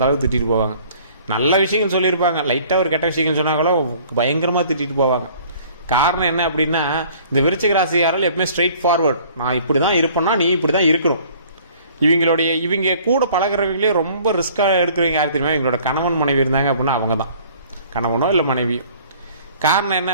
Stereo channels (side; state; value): both; inverted; correlation -0.53